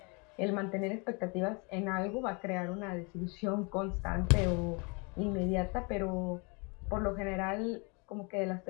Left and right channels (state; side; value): quieter; right; 31.6 dB